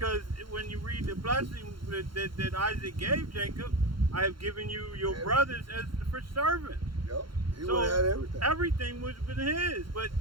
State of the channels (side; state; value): left; late; 0.73 ms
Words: when you read the blessing that Isaac gave Jacob, I have given you your brothers as for servants. Yep. He So would have had everything. everything would have been his, but